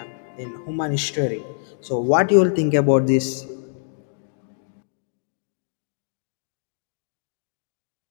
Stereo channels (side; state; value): right; silent; digital silence